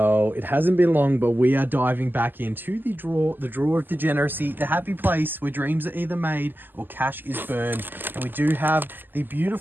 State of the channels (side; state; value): left; late; 0.091 ms